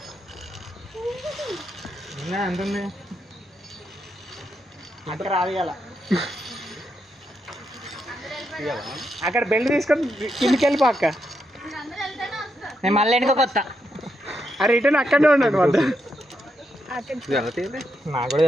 ఎంత ఉంది అక్కడ రాదియాల అక్కడ బెల్ట్ తీసుకొని కిందికి వెళ్ళిపో అక్క నేను మళ్ళీ వెనుక వస్తా ఆ రిటర్న్ అక్కడనే ఉన్నాడు వద్ద నాకు కూడా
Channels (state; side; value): normal; both; correlation 0.82